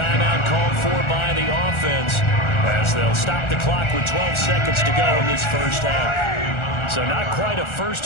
called for by the offense as they'll stop the clock with 12 seconds to go in this first half. So not quite a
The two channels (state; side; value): late; right; 1.4 ms